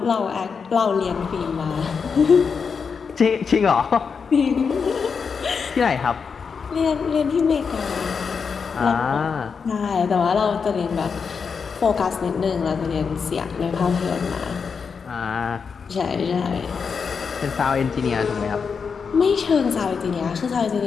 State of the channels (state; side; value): quieter; right; 5.8 dB